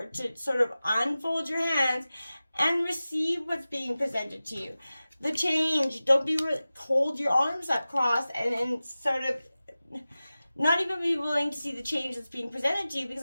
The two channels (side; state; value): both; inverted; correlation -0.96